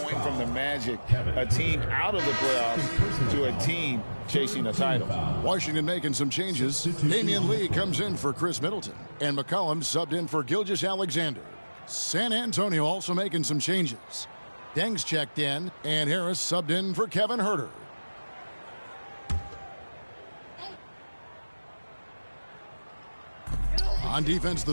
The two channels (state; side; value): inverted; both; correlation -1.00